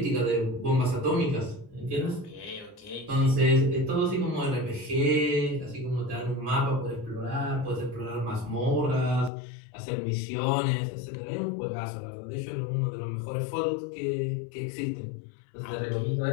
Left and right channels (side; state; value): right; drops out; at 9.3 s